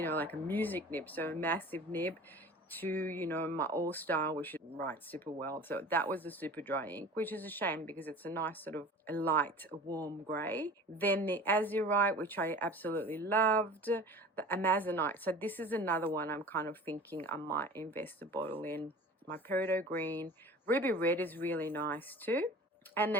know, like a music nib, so a massive nib, to, you know, my All-Star, which writes super well. So that was the super dry ink, which is a shame because it's a nice sort of a light, warm grey. Then the Azurite, which I absolutely loved. The Amazonite. So this is another one I'm kind of thinking I might invest a bottle in. My Peridot Green. Ruby Red is really nice too. And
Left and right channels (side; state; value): both; normal; correlation 0.40